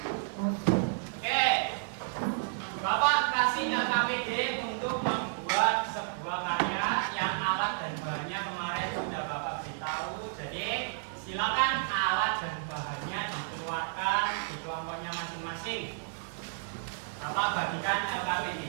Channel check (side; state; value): left; silent; digital silence